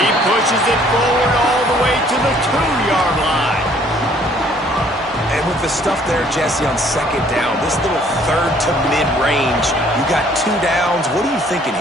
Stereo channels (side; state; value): both; normal; correlation 0.60